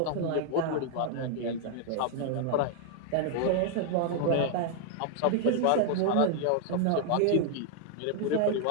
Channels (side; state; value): both; different; correlation 0.00